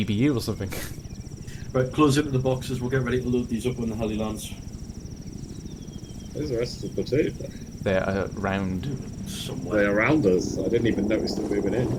or something. Right, close into the boxes, we'll get ready to load these up when the heli lands. Where's the rest of the platoon? They're around somewhere. They're around us. I didn't even notice them moving in.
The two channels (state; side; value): identical; both; correlation 1.00